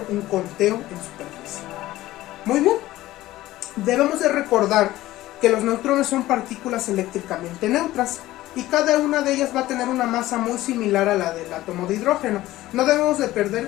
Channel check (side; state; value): right; quieter; 16.1 dB